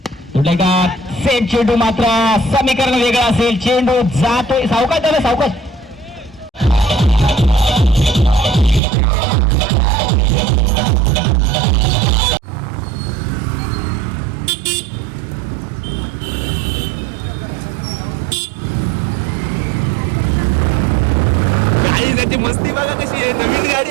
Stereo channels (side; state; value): left; drops out; at 8.8 s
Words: सेट चेंडू मात्र समीकरण वेगळं असेल. चेंडू जातोय सावकाश त्याला सावकाश. गाडी त्याची मस्ती बघा कशी आहे. नवीन गाडी